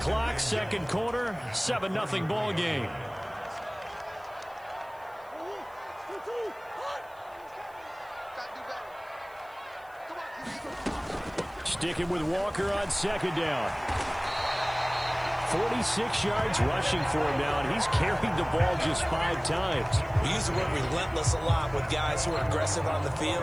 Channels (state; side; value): noise; right; hiss, 29 dB below the sound